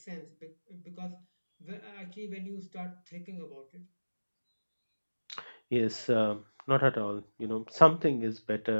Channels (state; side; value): inverted; both; correlation -1.00